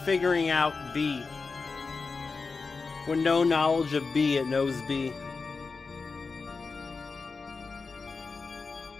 figuring out B. With no knowledge of B, it knows B.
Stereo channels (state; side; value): quieter; right; 4.4 dB